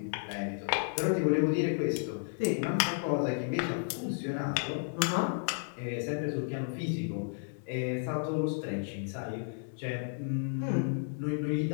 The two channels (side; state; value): right; silent; digital silence